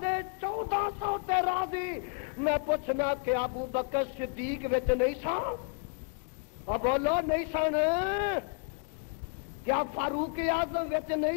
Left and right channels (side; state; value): right; quieter; 37.4 dB